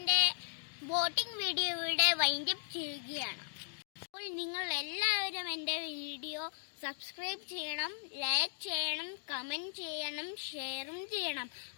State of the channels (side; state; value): right; silent; digital silence